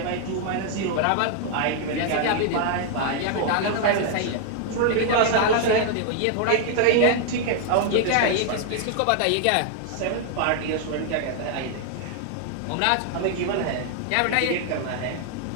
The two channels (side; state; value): both; different; correlation 0.00